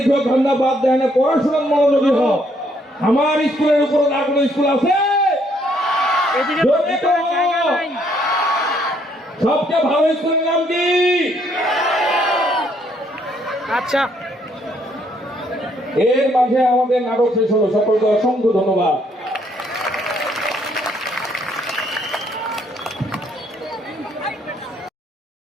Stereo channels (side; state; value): both; normal; correlation 0.69